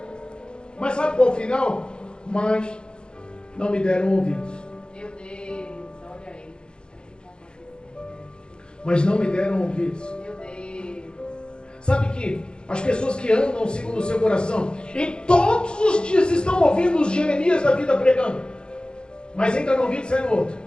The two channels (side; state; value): right; late; 0.051 ms